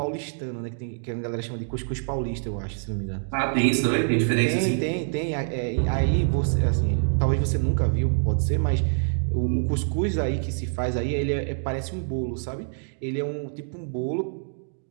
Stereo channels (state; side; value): silent; left; digital silence